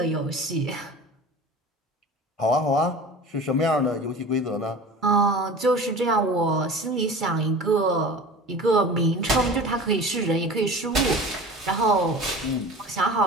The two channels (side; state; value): both; normal; correlation 0.37